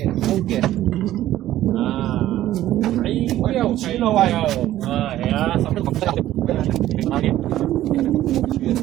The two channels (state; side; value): quieter; left; 13.8 dB